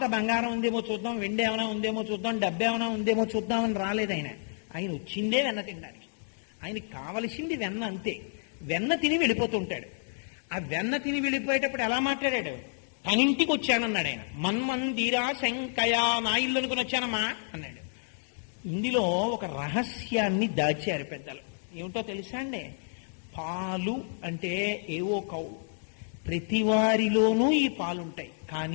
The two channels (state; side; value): silent; right; digital silence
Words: బంగారం ఉందేమో చూద్దాం, వెండి ఏమైనా ఉందేమో చూద్దాం, డబ్బు ఏమైనా ఉందేమో చూద్దామని రాలేదు. ఆయన వచ్చిందే వెన్న తినడానికి. ఆయనకి కావలసింది వెన్న, అంతే. వెన్న తిని వెళ్ళిపోతుంటాడు. ఆ వెన్న తిని వెళ్ళిపోయేటప్పుడు ఎలా మాట్లాడాడు? తనింటికి వచ్చానన్నాడు ఆయన. మన్మందిరా శంకయా, నా ఇల్లు అనుకుని వచ్చానమ్మా అన్నాడు. ఇందులో ఒక రహస్యాన్ని దాచారు పెద్దలు. ఏమిటో తెలుసా అండి? పాలు అంటే ఏవో కౌ, ప్రతి వారిలోనూ ఈ పాలుంటాయి.